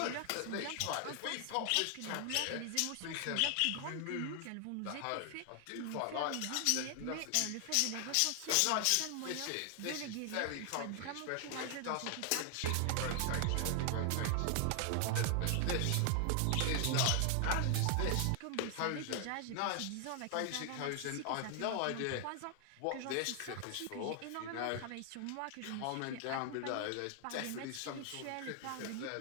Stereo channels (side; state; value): both; different; correlation 0.00